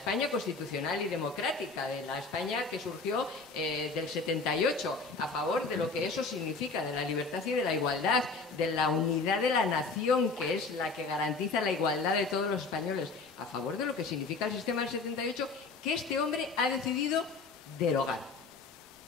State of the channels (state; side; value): quieter; right; 4.1 dB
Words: constitucional y democrática, de la España que surgió del 78, a favor de lo que eso significa, de la libertad y de la igualdad, de la unidad de la nación, que es la que garantiza la igualdad de todos los españoles, a favor de lo que significa el sistema del 78, que este hombre ha decidido derogar.